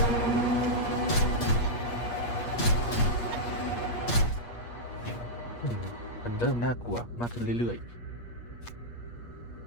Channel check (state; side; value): late; right; 8.5 ms